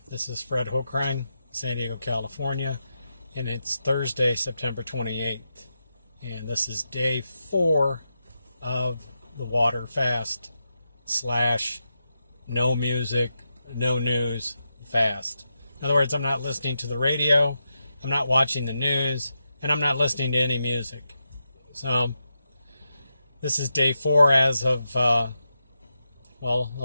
This is Fred Hochrein, San Diego, California, and it's Thursday, September 28th. And this is day 4 of the water fast slash no music, no news fast. In other words, I'm not listening to the radio, I'm not watching the news, and I'm not listening to any music. So this is day 4 as of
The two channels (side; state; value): both; inverted; correlation -0.87